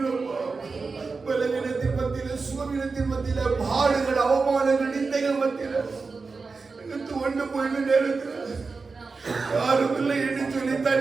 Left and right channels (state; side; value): quieter; left; 4.4 dB